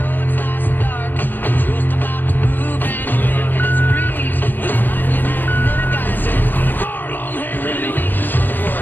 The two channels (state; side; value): late; right; 0.092 ms